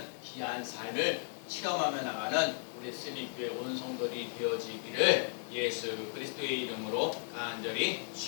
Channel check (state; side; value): silent; right; digital silence